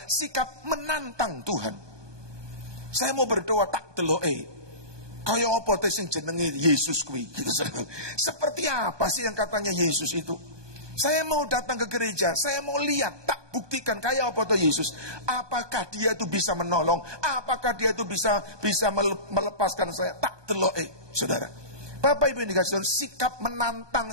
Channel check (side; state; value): left; late; 1.2 ms